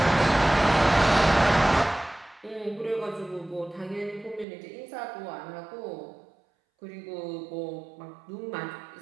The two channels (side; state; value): left; drops out; at 4.5 s